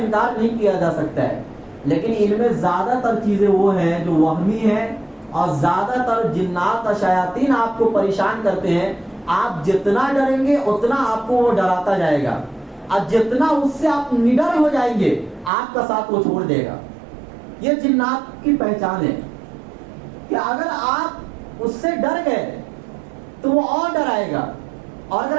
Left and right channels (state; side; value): drops out; left; at 15.5 s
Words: نہیں کیا جا سکتا ہے، لیکن ان میں زیادہ تر چیزیں وہ ہیں جو وہمی ہیں، اور زیادہ تر جنات اور شیاطین آپ کو پریشان کرتے ہیں۔ آپ جتنا ڈریں گے اتنا آپ کو وہ ڈراتا جائے گا، اور جتنا اس سے آپ نڈر ہو جائیں گے آپ کا ساتھ وہ چھوڑ دے گا۔ یہ جنات کی پہچان ہے کہ اگر آپ اس سے ڈر گئے تو وہ اور ڈرائے گا، اور اگر